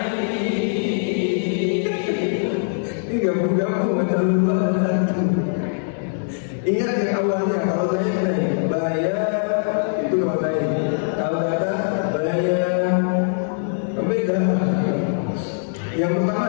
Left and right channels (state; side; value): silent; right; digital silence